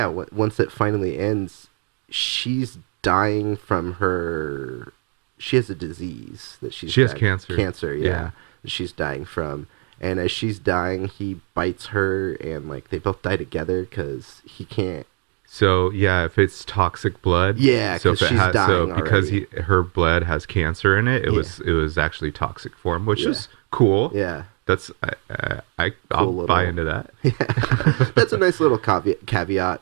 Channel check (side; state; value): left; quieter; 37.0 dB